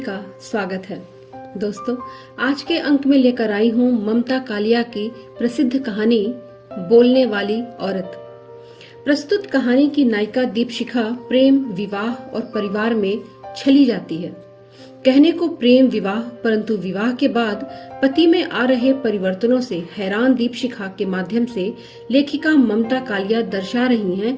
स्वागत है। दोस्तों, आज के अंक में लेकर आई हूँ ममता कालिया की प्रसिद्ध कहानी बोलने वाली औरत। प्रस्तुत कहानी की नायिका दीपशिखा प्रेम, विवाह और परिवार में छली जाती है। कहने को प्रेम विवाह, परंतु विवाह के बाद पति में आ रहे परिवर्तनों से हैरान दीपशिखा के माध्यम से लेखिका ममता कालिया दर्शा रही हैं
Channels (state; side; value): identical; both; correlation 1.00